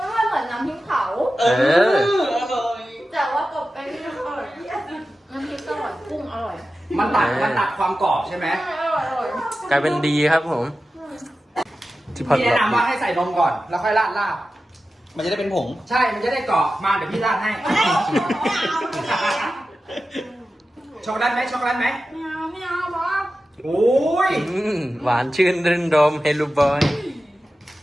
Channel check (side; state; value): both; normal; correlation 0.93